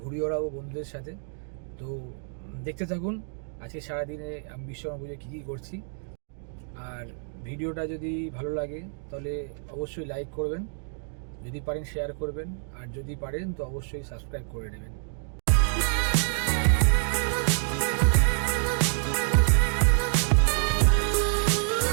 ঘুরি ওড়াবো বন্ধুদের সাথে। তো দেখতে থাকুন আজকে সারাদিনে আমি বিশ্বকর্মা পুজো কী কী করছি। আর ভিডিওটা যদি ভালো লাগে তাহলে অবশ্যই লাইক করবেন, যদি পারেন শেয়ার করবেন, আর যদি পারেন তো অবশ্যই সাবস্ক্রাইব করে নেবেন।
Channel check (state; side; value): silent; left; 59 dB below the other